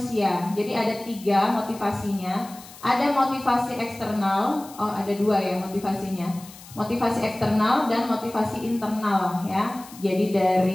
Jadi ada 3 motivasinya. Ada motivasi eksternal, ada 2 ya motivasinya. Motivasi eksternal dan motivasi internal, ya. Jadi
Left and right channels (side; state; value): left; noise; hiss, 19 dB below the sound